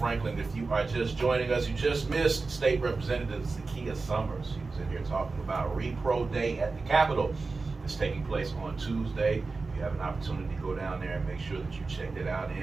If you are just joining us, you just missed State Representative Zakiya Summers. She was in here talking about Repro Day at the Capitol. It's taking place on Tuesday. If you have an opportunity to go down there and make sure that you checked it out.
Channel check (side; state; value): left; quieter; 4.0 dB